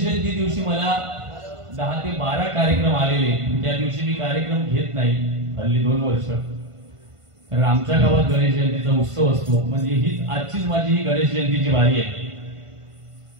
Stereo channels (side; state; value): left; late; 1.5 ms